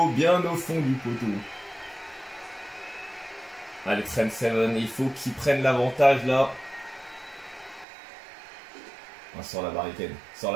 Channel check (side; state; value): left; drops out; at 7.9 s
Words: bien au fond du poteau. Allez, Trent Seven, il faut qu'il prenne l'avantage là. On sort la barricade. Sort